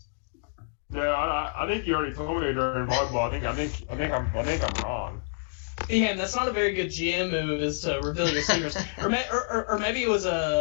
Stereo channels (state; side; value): silent; right; digital silence